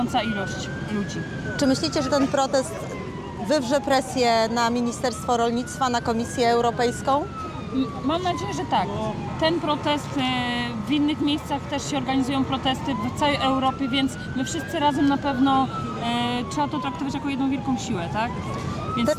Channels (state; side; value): identical; both; correlation 1.00